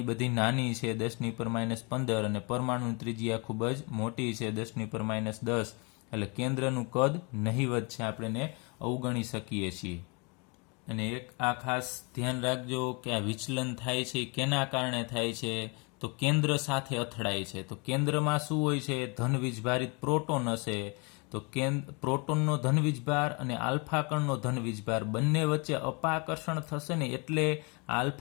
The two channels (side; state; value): right; quieter; 31.5 dB